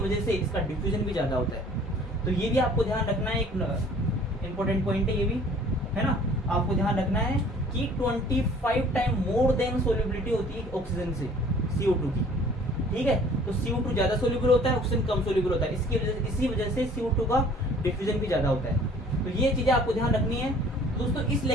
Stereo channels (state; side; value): normal; both; correlation 0.52